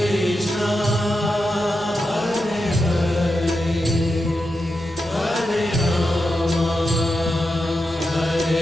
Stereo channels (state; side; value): normal; both; correlation 0.88